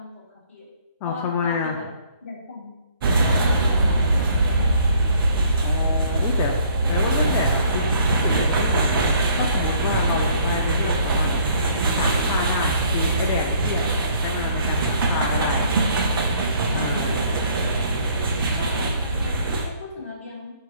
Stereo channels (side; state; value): both; inverted; correlation -0.61